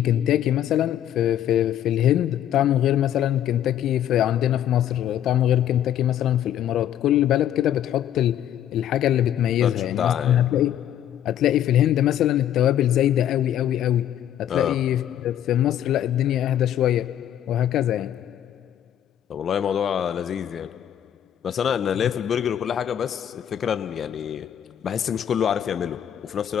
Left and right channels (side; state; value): right; quieter; 10.7 dB